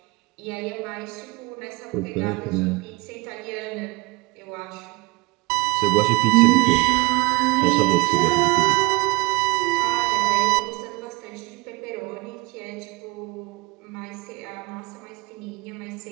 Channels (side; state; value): left; quieter; 23.7 dB